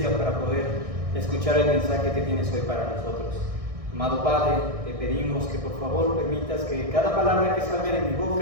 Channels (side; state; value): left; late; 1.6 ms